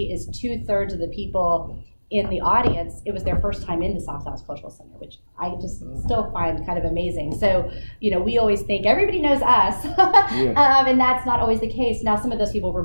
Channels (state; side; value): inverted; both; correlation -1.00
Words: is 2/3 of the people in the audience, it was their first time in the South Dallas Cultural Center, which I just still find kind of amazing. So, we always think everybody knows us, and that's not always the case. Now, some of those people were